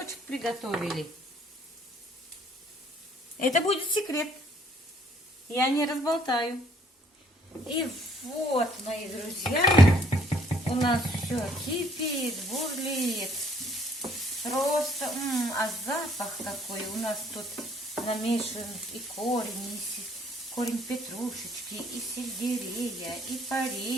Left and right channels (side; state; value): both; normal; correlation 0.63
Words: приготовили. Это будет секрет. Я не разболтаю. И вот, мои друзья, у нас все кипит, бурлит. Просто, а запах какой. У нас тут намешан и корень петрушечки, и сельдерея, и